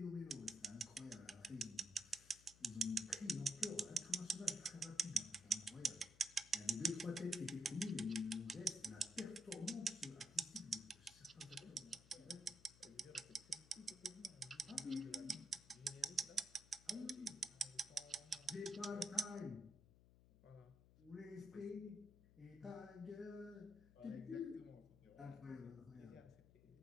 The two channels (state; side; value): noise; left; hum, 22 dB below the sound